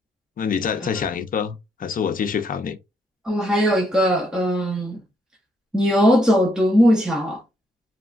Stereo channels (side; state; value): both; normal; correlation 0.74